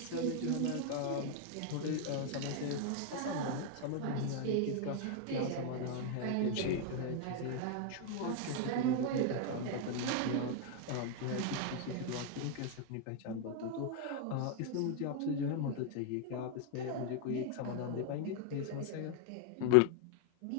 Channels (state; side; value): different; both; correlation 0.01